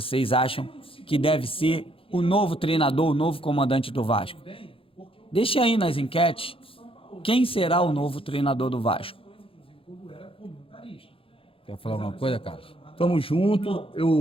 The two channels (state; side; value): late; right; 0.26 ms